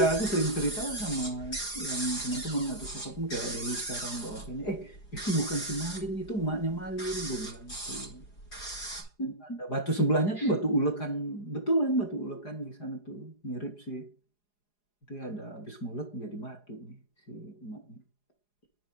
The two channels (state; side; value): late; right; 4.9 ms